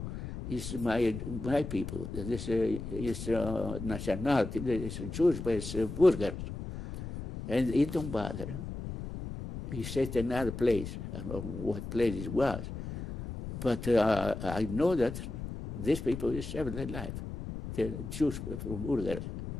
is my people. This is nationality, it's Jews, but it's Bulgars. And it don't bother. He set another place. I don't know what place it was. But I know that these people is saved their life. The Jews from Bulgaria.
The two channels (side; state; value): left; noise; rumble, 8 dB below the sound